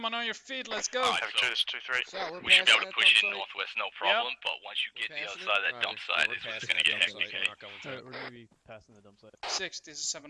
on your feet. Let's go. Alright, 2, this is 2-3. We should be able to push in northwest, no problem, but once you get to the other side of that dump site, it's just going to get hectic. Alright, we're gonna be passing the dump site. 6, this is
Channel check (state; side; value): identical; both; correlation 1.00